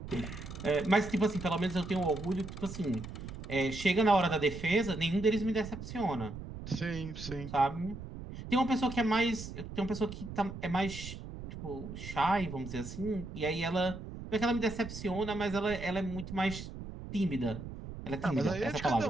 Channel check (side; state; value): right; noise; rumble, 10 dB below the sound